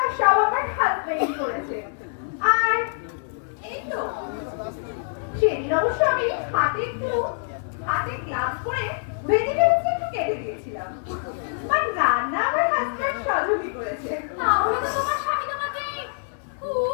সব আমার হাজবেন্ড করেছে। আর এই তো সেদিন অবশ্য আমি হাতে গ্লাভস পরে ভেজিটেবলস একটু কেটে দিয়েছিলাম। আর রান্না আমার হাজবেন্ড সহযোগী করেছে। তাহলে তো তোমার স্বামী তোমাকে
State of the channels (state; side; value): silent; right; 62 dB below the other